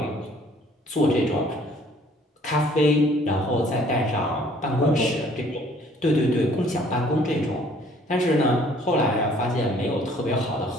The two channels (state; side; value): normal; both; correlation 0.58